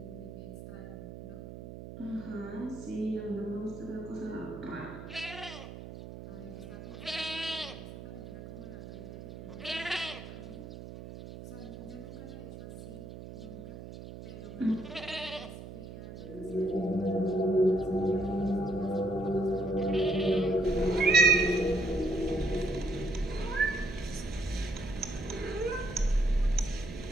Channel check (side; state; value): right; noise; hum, 12 dB below the sound